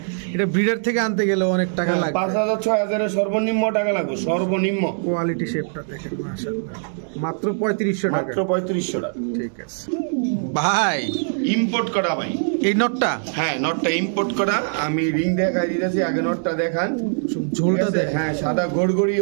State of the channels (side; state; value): left; silent; digital silence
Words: এটা ব্রিডার থেকে আনতে গেলে অনেক টাকা লাগবে। 5,000 6,000 সর্বনিম্ন টাকা লাগবে, সর্বনিম্ন। কোয়ালিটি শেপটা দেখেন মাশাআল্লাহ, মাত্র 3500 টাকা। মাত্র 3500 টাকা। ঠিক আছে ভাই, ইম্পোর্ট করা ভাই এই নটটা। হ্যাঁ, নটটা ইম্পোর্ট করা। আমি রিং দেখাই দিতেছি, আগে নটটা দেখান। ঝোলটা ঠিক আছে? দেখেন। হ্যাঁ, সাদা